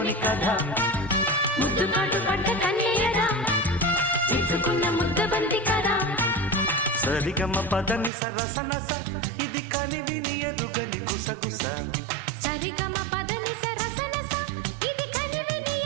కథ ముద్దు కాటు పడ్డ కన్యయదా ఇచ్చుకున్న ముద్దబంతి కదా సరిగమ పదని సరసనస ఇది కనివిని ఎరుగని గుసగుస సరిగమ పదని సరసనస ఇది కనివిని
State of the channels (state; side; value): drops out; left; at 8.1 s